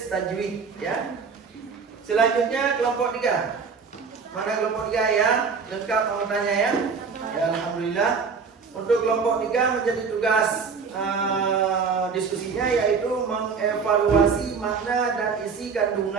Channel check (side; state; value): left; quieter; 5.4 dB